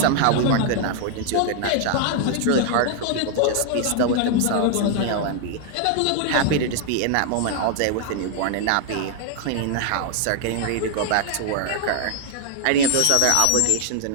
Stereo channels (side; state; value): both; different; correlation 0.00